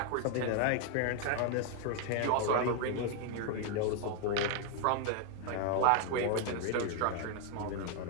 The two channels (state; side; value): different; both; correlation 0.00